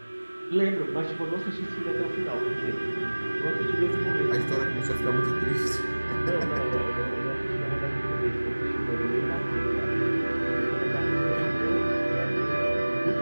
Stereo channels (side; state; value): both; inverted; correlation -1.00